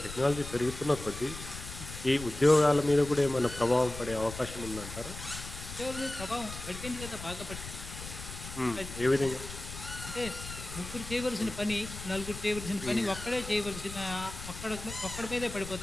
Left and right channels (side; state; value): left; noise; rumble, 11 dB below the sound